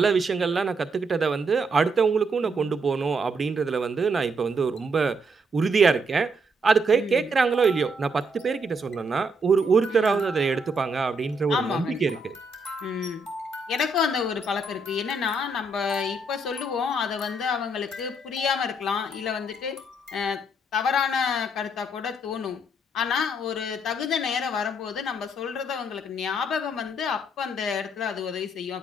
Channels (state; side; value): normal; both; correlation 0.74